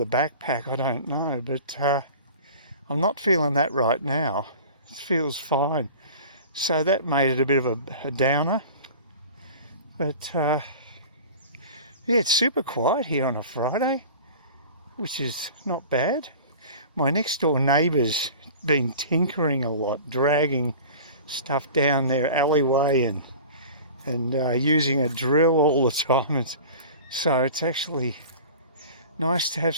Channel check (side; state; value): both; inverted; correlation -0.39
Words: backpack, I don't know, but I'm not feeling that right now. It feels fine. So that made it a bit of a downer. But yeah, it's super quiet here on a Friday, which is not bad. My next door neighbour's been tinkering a lot, dragging stuff down their alleyway and using a drill all the time. So it's actually nice to have